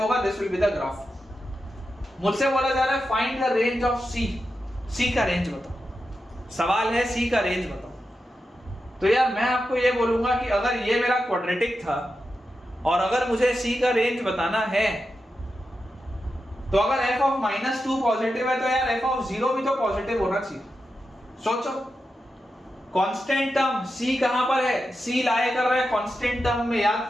होगा, this will be the graph. मुझसे बोला जा रहा है find the range of c का रेंज बताओ, सवाल है c का रेंज बताओ। तो यार मैं आपको ये बोलूंगा कि अगर ये मेरा क्वाड्रेटिक था और अगर मुझे c का रेंज बताना है, तो अगर f ऑफ -2 पॉजिटिव है तो यार f ऑफ 0 भी तो पॉजिटिव होना चाहिए। सोचो, कांस्टेंट टर्म c कहां पर है, c लाए कर रहा है कांस्टेंट टर्म में, याद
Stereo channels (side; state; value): both; normal; correlation 0.89